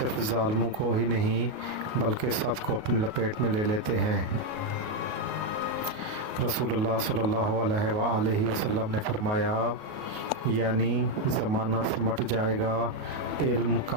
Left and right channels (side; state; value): left; late; 38 ms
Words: ظالموں کو ہی نہیں بلکہ سب کو اپنی لپیٹ میں لے لیتے ہیں۔ رسول اللہ صلی اللہ علیہ وآلہ وسلم نے فرمایا، یعنی زمانہ سمٹ جائے گا، علم